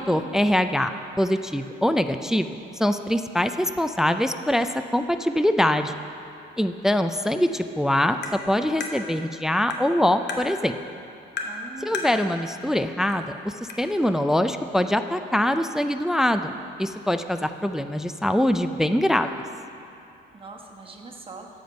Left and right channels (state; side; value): normal; both; correlation 0.89